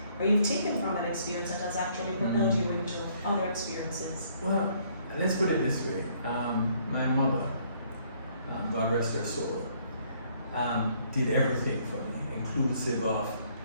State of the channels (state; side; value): inverted; both; correlation -0.65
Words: or you've taken from that experience that has actually propelled you into other experiences? Well, let's put it this way. My mother, God rest her soul, did everything for me, inclusive of